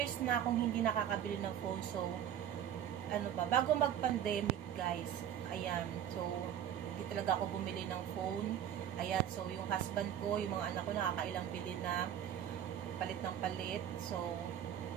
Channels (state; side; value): quieter; left; 10.0 dB